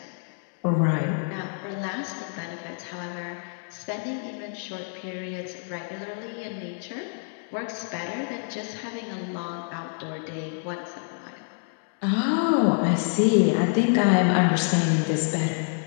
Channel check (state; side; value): silent; right; 60 dB below the other